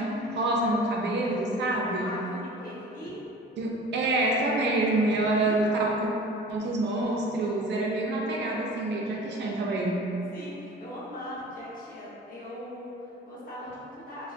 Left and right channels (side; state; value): both; normal; correlation 0.41